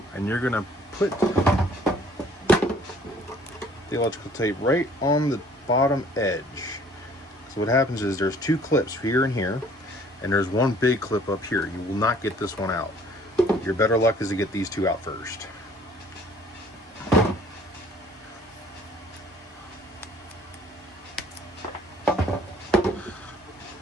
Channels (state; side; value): normal; both; correlation 0.56